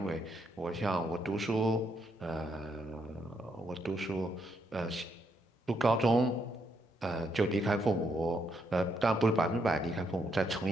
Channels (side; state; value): both; normal; correlation 0.76